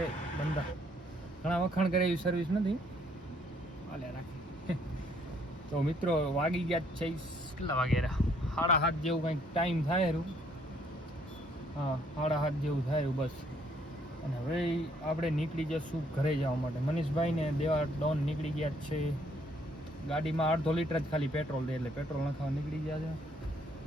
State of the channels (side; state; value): both; normal; correlation 0.66